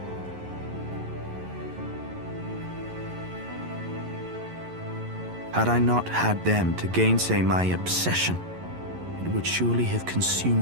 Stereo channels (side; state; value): left; late; 11 ms